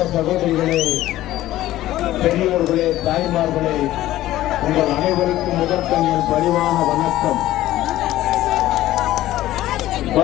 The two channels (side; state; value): right; quieter; 14.9 dB